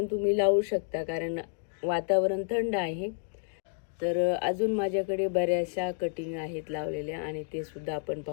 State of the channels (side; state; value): right; silent; digital silence